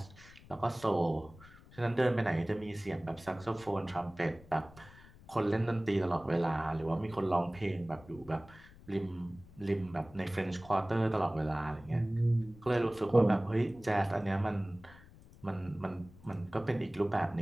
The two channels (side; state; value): left; noise; rumble, 22 dB below the sound